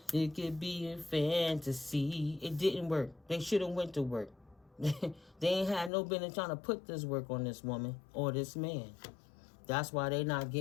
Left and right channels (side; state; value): right; drops out; at 5.9 s